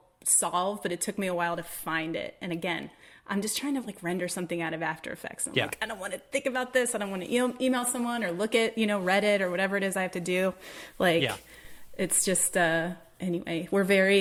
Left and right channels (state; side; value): identical; both; correlation 1.00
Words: solve, but it took me a while to find it. And again, I'm just trying to render something out of After Effects. And I'm like, I don't want to think about this. I don't want to email someone or look at, Reddit or whatever it is I have to do. It's just, anyway, we're